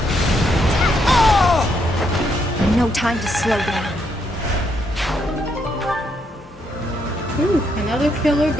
No time to slow down. Ooh, another killer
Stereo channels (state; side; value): normal; both; correlation 0.76